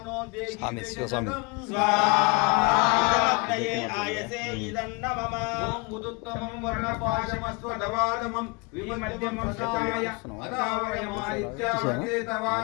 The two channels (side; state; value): right; quieter; 29.3 dB